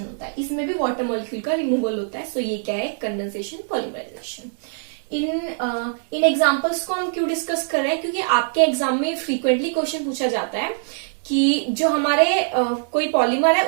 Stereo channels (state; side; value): silent; left; digital silence